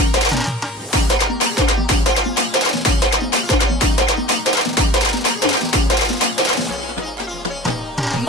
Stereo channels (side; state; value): both; normal; correlation 0.42